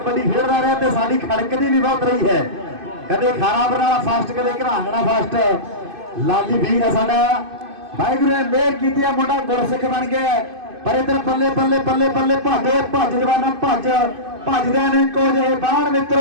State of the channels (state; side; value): late; left; 2.5 ms